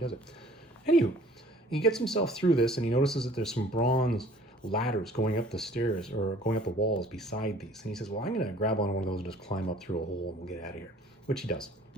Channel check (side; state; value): both; normal; correlation 0.53